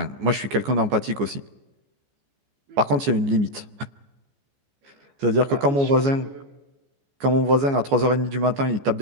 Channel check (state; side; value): late; left; 14 ms